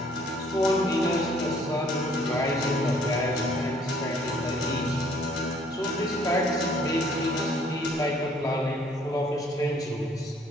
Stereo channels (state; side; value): normal; both; correlation 0.61